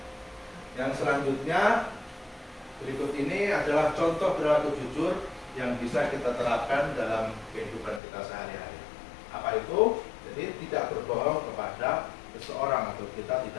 yang selanjutnya berikut ini adalah contoh perilaku jujur yang bisa kita terapkan dalam kehidupan kita sehari-hari. Apa itu? Jadi tidak berbohong kepada seseorang, atau kita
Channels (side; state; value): right; drops out; at 8.0 s